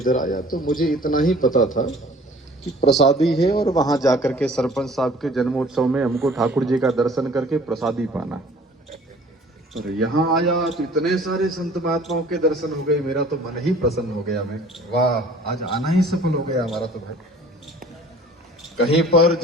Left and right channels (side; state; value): both; normal; correlation 0.50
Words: आया तो मुझे इतना ही पता था कि प्रसादी है और वहां जाकर के सरपंच साहब के जन्मोत्सव में हमको ठाकुर जी का दर्शन करके प्रसादी पाना। और यहाँ आया तो इतने सारे संत महात्माओं के दर्शन हो गए, मेरा तो मन ही प्रसन्न हो गया। मैं वाह, आज आना ही सफल हो गया हमारा तो भाई। कहीं पर